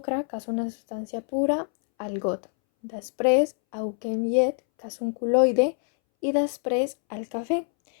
que és una substància pura, al got. Després aboquem llet, que és un col·loide, i després el cafè,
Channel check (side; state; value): right; silent; 61 dB below the other